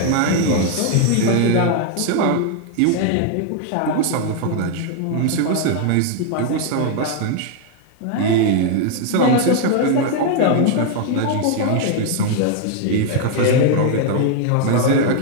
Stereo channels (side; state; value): both; different; correlation 0.00